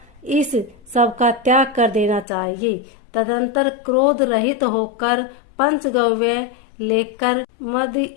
इस सब का त्याग कर देना चाहिए। तदंतर क्रोध रहित होकर पंचगव्य लेकर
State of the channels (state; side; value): drops out; right; at 2.2 s